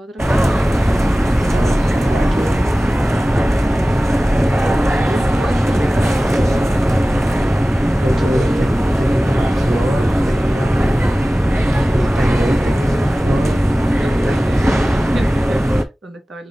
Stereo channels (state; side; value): normal; both; correlation 0.96